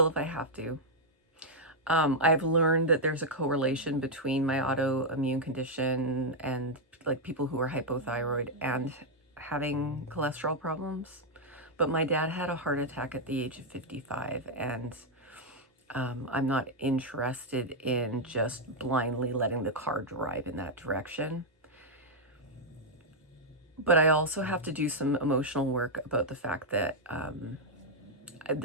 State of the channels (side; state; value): both; normal; correlation -0.02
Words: if I have to. I've learned that there's a correlation between my autoimmune condition and, like, people who are hypothyroid and having cholesterol problems. But my dad had a heart attack at the age of 55, and I'm not interested in just blindly letting the car drive in that direction. But I also have to do some emotional work about the fact that